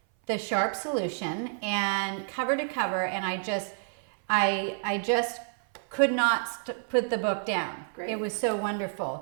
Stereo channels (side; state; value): left; silent; 57 dB below the other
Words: The Sharp Solution, and cover to cover, and I just could not put the book down. Great. It was so